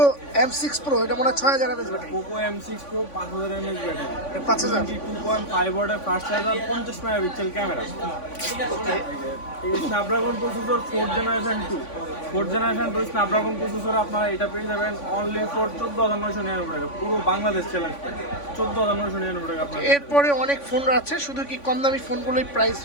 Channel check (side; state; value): right; late; 3.5 ms